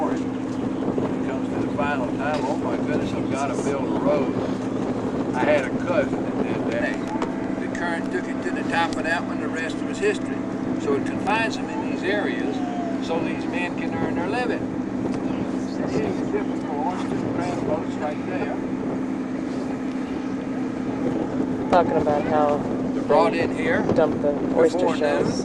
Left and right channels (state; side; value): identical; both; correlation 1.00